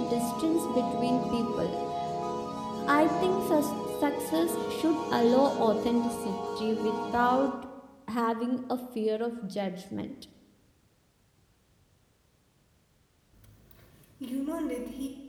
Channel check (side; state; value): both; identical; correlation 1.00